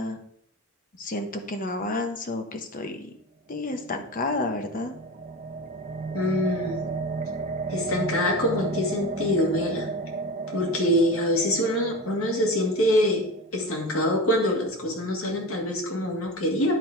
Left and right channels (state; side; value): normal; both; correlation 0.28